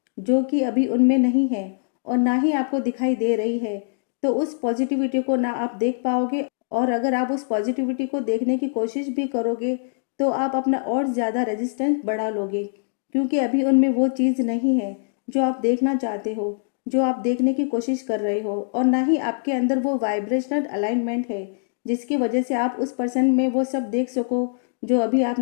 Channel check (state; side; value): silent; right; digital silence